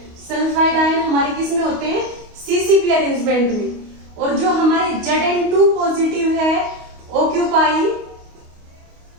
Sulphide ion हमारे किस में होते हैं? सीसीपी अरेंजमेंट में। और जो हमारे Zn2 पॉजिटिव है occupy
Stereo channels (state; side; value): late; left; 28 ms